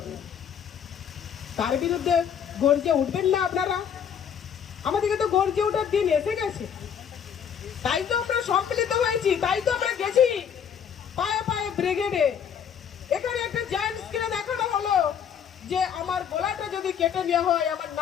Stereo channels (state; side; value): quieter; right; 8.0 dB